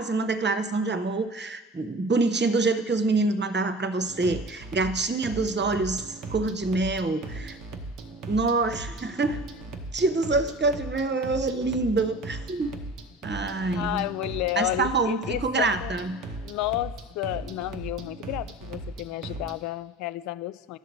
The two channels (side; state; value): both; normal; correlation 0.39